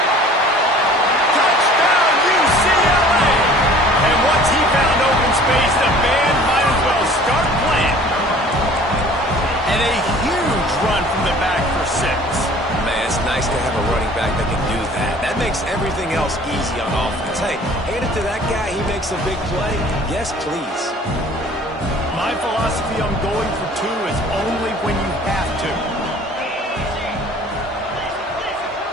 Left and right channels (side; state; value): both; normal; correlation 0.49